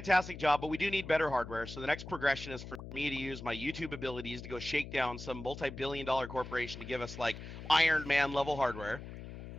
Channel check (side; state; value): left; noise; hum, 11 dB below the sound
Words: job, but we do need better hardware. So the next progression is for me to use my YouTube abilities to go shake down some multi-billion-dollar corporation to give us like Iron Man level hardware.